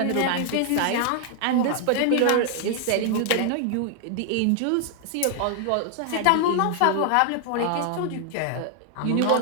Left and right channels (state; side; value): different; both; correlation 0.00